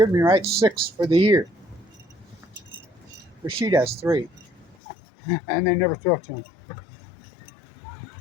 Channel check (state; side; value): drops out; right; at 4.8 s